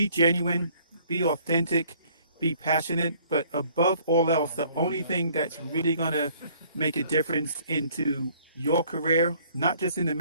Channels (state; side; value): inverted; both; correlation -0.59